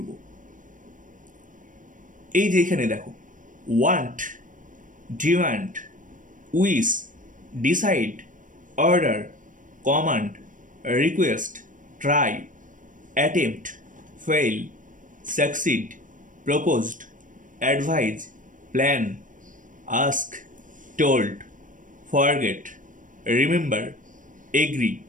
এই যে এখানে দেখো, want, demand, wish, decide, order, command, request, try, attempt, fail, succeed, proposed, advise, plan, ask, told, forget, remember, agree,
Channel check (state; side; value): late; left; 0.38 ms